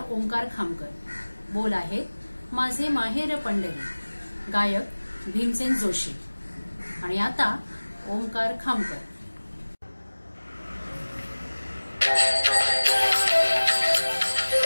ओंकार खामकर. बोल आहेत माझे माहेर पंढरी, गायक भीमसेन जोशी. आणि आता ओंकार खामकर.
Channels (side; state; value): both; inverted; correlation -1.00